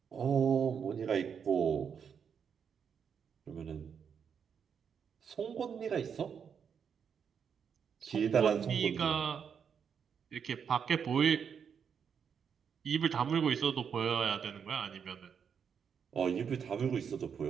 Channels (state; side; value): quieter; left; 7.1 dB